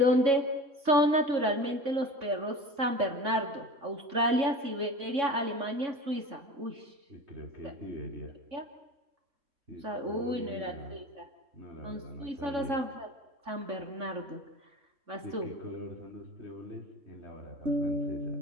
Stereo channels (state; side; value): late; left; 3.6 ms